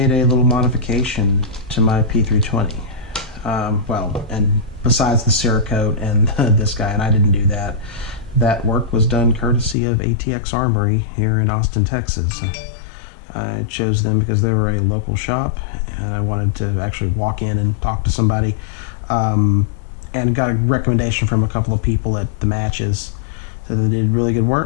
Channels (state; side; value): drops out; right; at 9.8 s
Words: a little modification to my P320. Well, and besides the Cerakote and this guy, and I didn't do that. That work was done courtesy of ATX Armory here in Austin, Texas. I chose them because they were a local shop, and I wanted to actually walk in and talk to somebody. And got a recommendation from a couple of people at the matches that they did really good